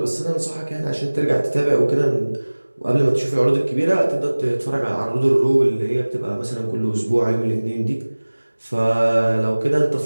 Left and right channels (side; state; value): both; inverted; correlation -1.00